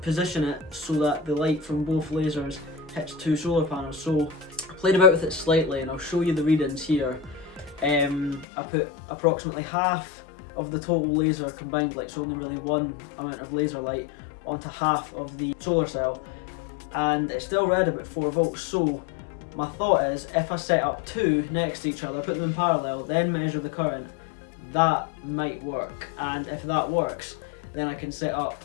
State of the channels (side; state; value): right; drops out; at 8.5 s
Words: position it so that the light from both lasers hits two solar panels? So I played about with it slightly and I'll show you the readings here. I put approximately half of the total laser combined, like so only really one amount of laser light, onto half of the solar cell, and it still read about 4 volts. So my thought is, if I set up two next to each other, put them in parallel, then measure the current, that might work. And if that works, then I can set up